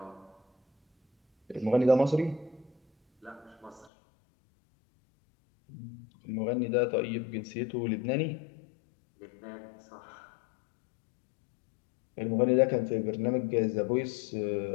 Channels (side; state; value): right; drops out; at 3.9 s